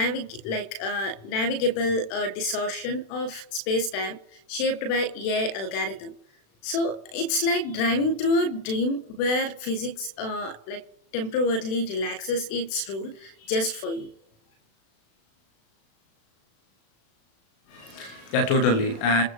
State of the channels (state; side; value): late; right; 36 ms